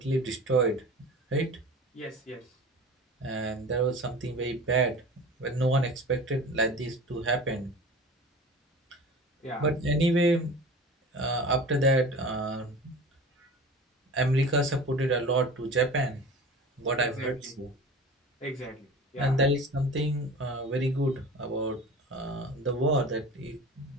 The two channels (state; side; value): normal; both; correlation 0.37